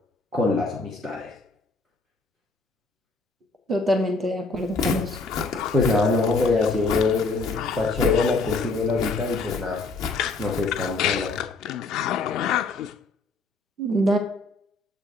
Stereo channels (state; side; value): quieter; right; 3.4 dB